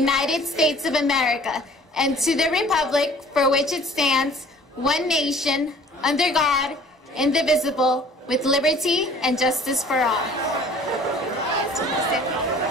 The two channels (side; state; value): both; normal; correlation 0.51